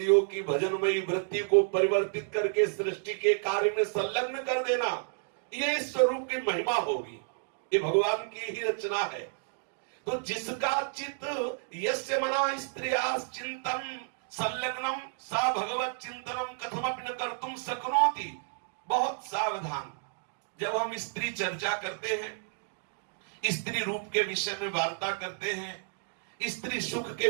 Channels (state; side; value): silent; left; digital silence